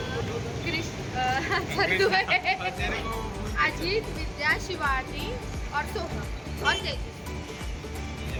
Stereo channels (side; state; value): both; identical; correlation 1.00